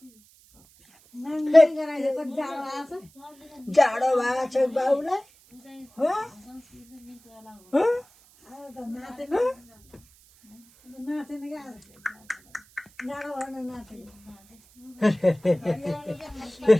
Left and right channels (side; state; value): right; noise; hiss, 28 dB below the sound